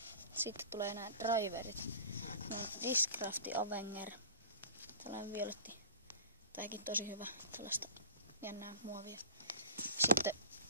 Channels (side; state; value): both; inverted; correlation -0.40